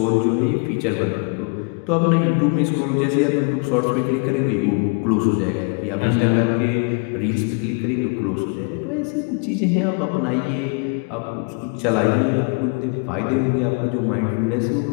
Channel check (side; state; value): right; quieter; 35.5 dB